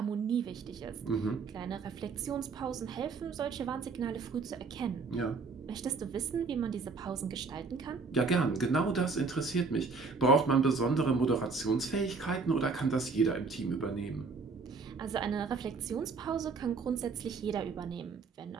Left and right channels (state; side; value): quieter; left; 4.5 dB